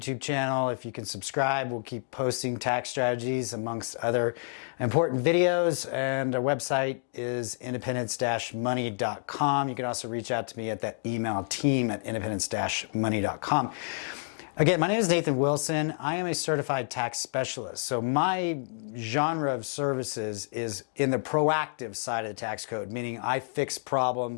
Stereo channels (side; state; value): right; silent; digital silence